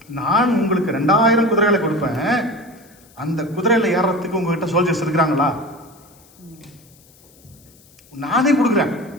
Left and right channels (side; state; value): left; noise; hiss, 28 dB below the sound